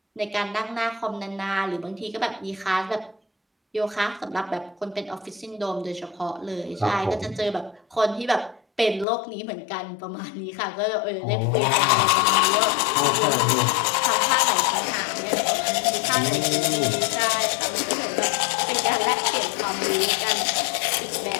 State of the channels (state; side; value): drops out; right; at 9.1 s